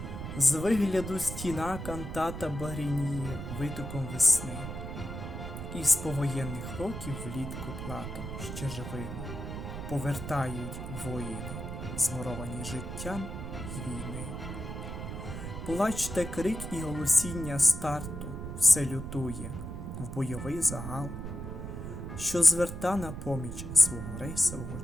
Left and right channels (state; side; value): noise; right; rumble, 7 dB below the sound